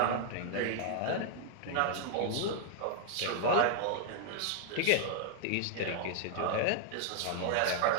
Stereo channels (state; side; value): different; both; correlation -0.01